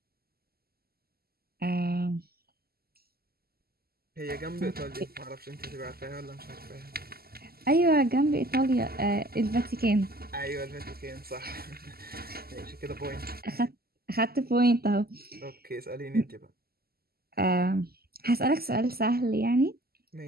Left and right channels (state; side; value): late; left; 0.45 ms